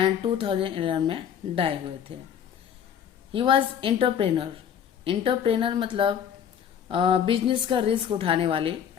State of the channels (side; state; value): right; quieter; 8.7 dB